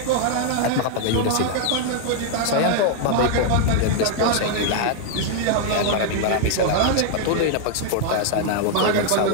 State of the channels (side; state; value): both; different; correlation 0.00